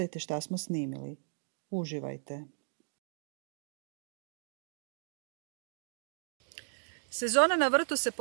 šta smo snimili. Uživajte. Sezona na vrtu se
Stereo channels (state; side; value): silent; left; digital silence